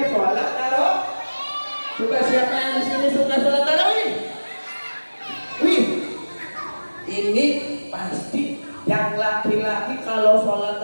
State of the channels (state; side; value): inverted; both; correlation -1.00